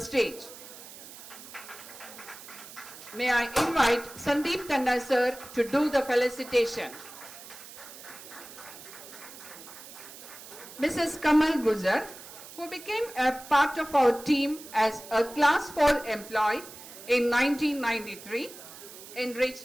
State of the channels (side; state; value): right; noise; hiss, 16 dB below the sound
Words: May I invite Sandeep Tanna sir to do the felicitation. Mrs. Kamal Guzar, who became a part of our team as a Class 4 employee in 1993,